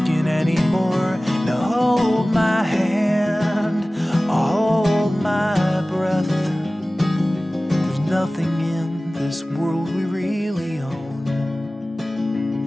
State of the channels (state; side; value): normal; both; correlation 0.97